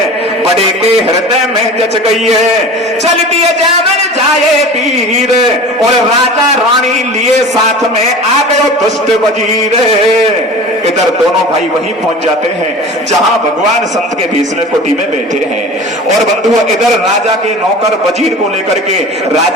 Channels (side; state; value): both; normal; correlation 0.37